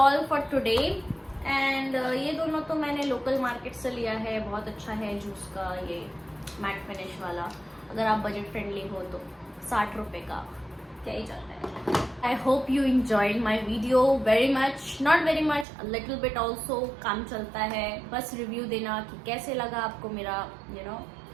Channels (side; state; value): left; drops out; at 15.7 s